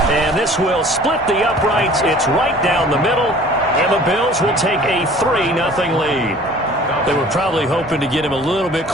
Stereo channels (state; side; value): normal; both; correlation 0.49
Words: And this will split the uprights. It's right down the middle, and the Bills will take a 3-0 lead. They were probably hoping to get him a little bit